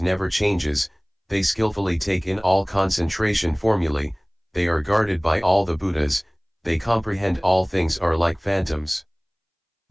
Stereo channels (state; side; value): identical; both; correlation 1.00